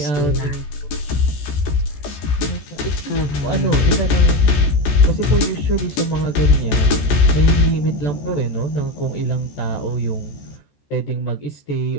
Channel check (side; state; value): right; late; 14 ms